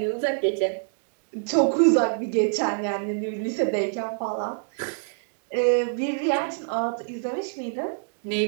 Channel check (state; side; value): silent; left; digital silence